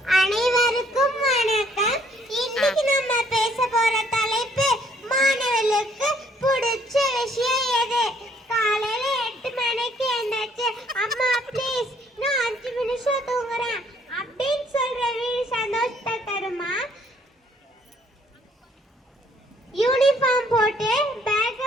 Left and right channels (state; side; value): normal; both; correlation 0.64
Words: அனைவருக்கும் வணக்கம். இன்னைக்கு நம்ம பேச போற தலைப்பு மாணவர்களுக்கு பிடிச்ச விஷயம் எது? காலையில 8 மணிக்கு எழுந்தாச்சு, அம்மா ப்ளீஸ் நான் 5 நிமிஷம் தூங்குறேன் அப்படின்னு சொல்ற வீடு சந்தோஷத்தை தருமா? யூனிஃபார்ம் போட்டு